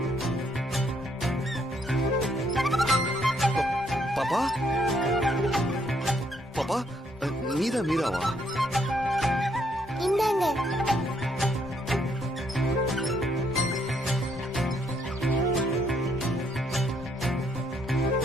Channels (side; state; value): both; normal; correlation 0.71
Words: பாப்பா, பாப்பா, நீதான் மீராவா? இந்தாங்க.